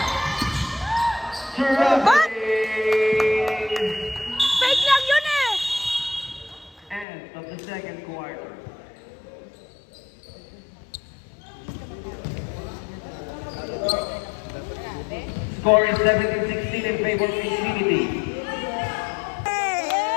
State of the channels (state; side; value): drops out; right; at 7.1 s